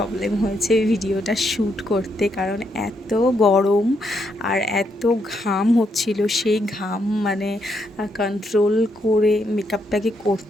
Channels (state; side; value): normal; both; correlation 0.78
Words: হয়েছে ভিডিওটা শ্যুট করতে, কারণ এত গরম আর এত ঘাম হচ্ছিল। সেই ঘাম মানে কন্ট্রোল করে মেকআপটাকে